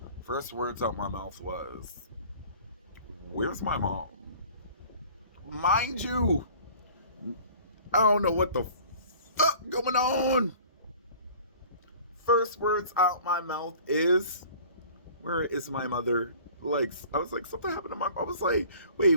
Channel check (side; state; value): both; inverted; correlation -0.47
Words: First words out my mouth was, "Where's my mom?" Mind you, I don't know what the fuck going on. First words out my mouth is, "Where is my mother?" Like, I was like, something happened to my. I was like, wait,